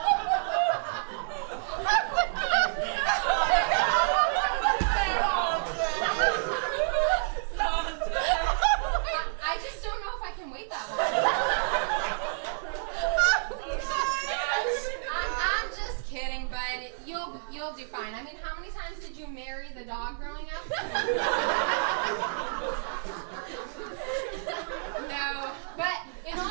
I just don't know if I can wait that long. I'm just kidding, but you'll do fine. I mean, how many times did you marry the dog growing up? No, but in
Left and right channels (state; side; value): silent; left; 58 dB below the other